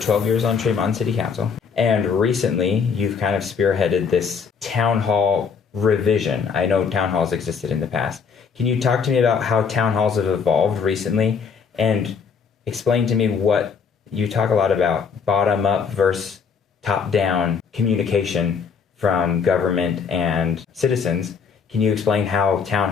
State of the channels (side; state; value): right; quieter; 6.1 dB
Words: years on Tremont City Council, and recently you've kind of spearheaded this town hall revision. I know town halls existed in the past. Can you talk to me about how town halls have evolved recently, and explain to me what you talk a lot about bottom up versus top down communication from government and citizens. Can you explain how town